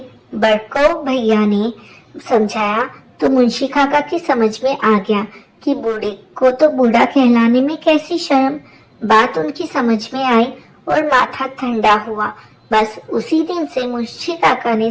बड़को भैया ने समझाया तो मुंशी काका की समझ में आ गया कि बूढ़े को तो बूढ़ा कहलाने में कैसी शर्म। बात उनकी समझ में आई और माथा ठंडा हुआ। बस उसी दिन से मुंशी काका ने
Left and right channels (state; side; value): identical; both; correlation 1.00